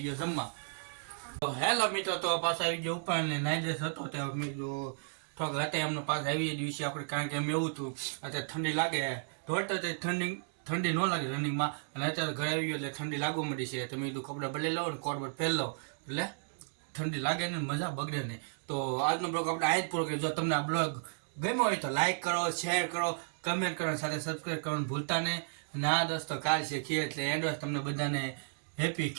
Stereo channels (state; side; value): silent; left; digital silence